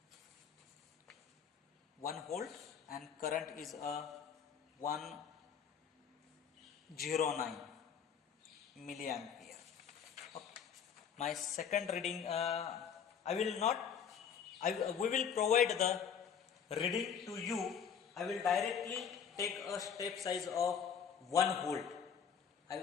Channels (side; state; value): right; quieter; 7.4 dB